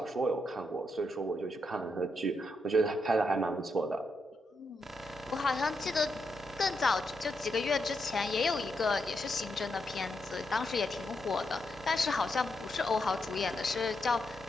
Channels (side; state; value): both; normal; correlation 0.82